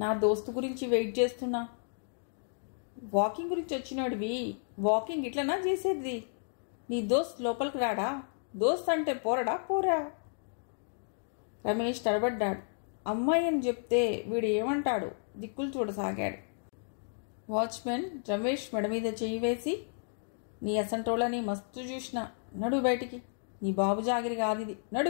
దోస్తు గురించి వెయిట్ చేస్తున్నా. వాకింగ్ గురించి వచ్చినాడివి? వాకింగ్ ఇట్లనా చేసేది? నీ దోస్త్ లోపలికి రాడా? దోస్త్ అంటే పోరడా పోరా? రమేష్ తడబడ్డాడు. అమ్మాయి అని చెప్తే వీడు ఏమంటాడు? దిక్కులు చూడసాగాడు. వాచ్మెన్ రమేష్ మెడ మీద చేయి వేసి, నీ అసంటోళ్ళని మస్తు చూసినా, నడు బయటికి, నీ బాబు జాగిరి కాదిది,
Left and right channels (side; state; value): right; silent; digital silence